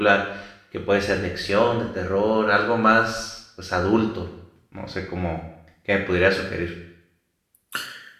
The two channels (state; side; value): identical; both; correlation 1.00